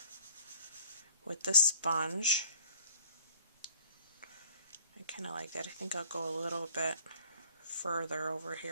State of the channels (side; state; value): both; inverted; correlation -0.54